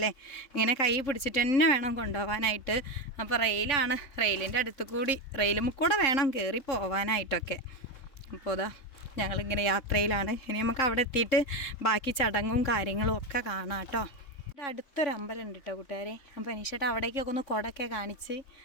ഇങ്ങനെ കൈ പിടിച്ചിട്ട് തന്നെ വേണം കൊണ്ടുപോകാനായിട്ട്. അപ്പോൾ റെയിലാണ്. റെയിലിൻ്റെ അടുത്ത് കൂടി റെയിലും കൂടെ വേണം കയറി പോകാനായിട്ടൊക്കെ. അപ്പോൾ അതാ ഞങ്ങളിങ്ങനെ യാത്രയിലാണ്. ഇനി നമുക്ക് അവിടെ എത്തിയിട്ട് ബാക്കി ചടങ്ങും കാര്യങ്ങളും ഒക്കെ കാണാം കേട്ടോ. ഇവിടെ അടുത്തൊരു അമ്പലം ഉണ്ട് കേട്ടോ കൂട്ടുകാരെ. അപ്പോൾ അനീഷേട്ടാ അവിടേക്കൊക്കെ ഒന്ന് കുടയൊക്കെ കാണിച്ച്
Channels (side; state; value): right; late; 3.8 ms